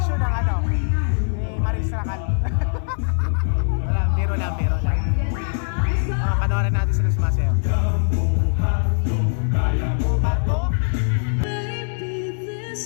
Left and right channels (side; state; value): right; silent; digital silence